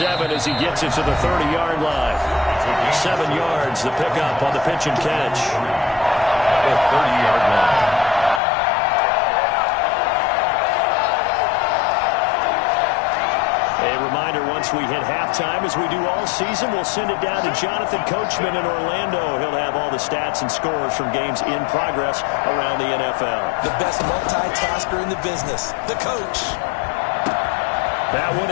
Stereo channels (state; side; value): drops out; right; at 8.4 s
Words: as he gets it to the 30-yard line. 7 yards, the pickup on the pitch and catch. The 30-yard line. A reminder, once we hit halftime, as we do all season, we'll send it down to Jonathan Coachman in Orlando. He'll have all the stats and scores from games in progress around the NFL. The best multitasker in the business, the coach. That one